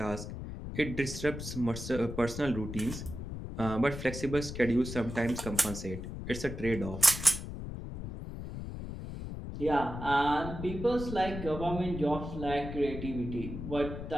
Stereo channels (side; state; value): left; noise; rumble, 8 dB below the sound